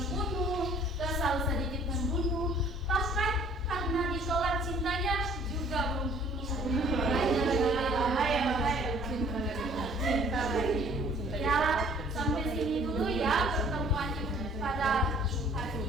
kesal sedikit membunuh, bahkan karena ditolak cintanya juga membunuh. Ya, sampai sini dulu ya pertemuan pada hari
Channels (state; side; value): normal; both; correlation 0.56